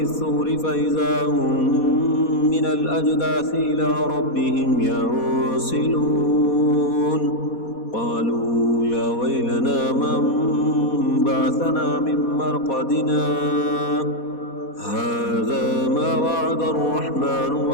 الصور فإذا هم من الأجداث إلى ربهم ينسلون قالوا يا ويلنا من بعثنا من مرقدنا هذا ما وعد الرحمن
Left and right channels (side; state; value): right; late; 4.2 ms